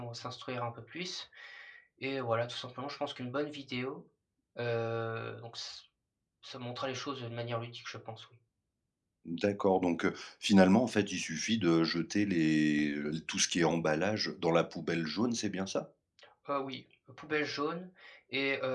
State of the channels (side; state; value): both; identical; correlation 1.00